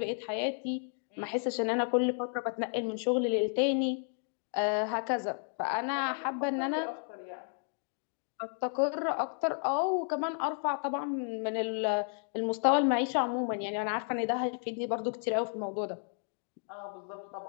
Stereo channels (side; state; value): right; silent; 56 dB below the other